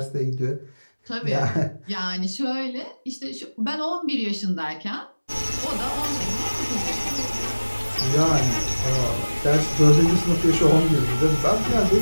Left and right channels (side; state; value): both; inverted; correlation -1.00